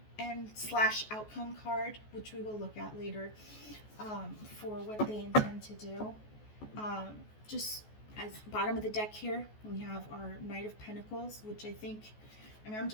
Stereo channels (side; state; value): right; late; 14 ms